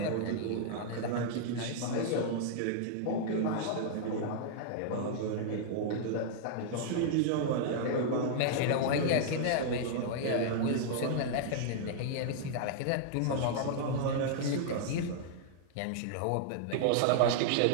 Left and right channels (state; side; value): different; both; correlation -0.01